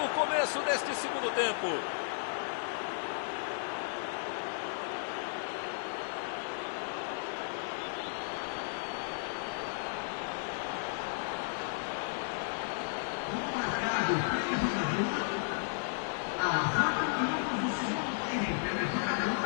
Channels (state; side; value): silent; right; digital silence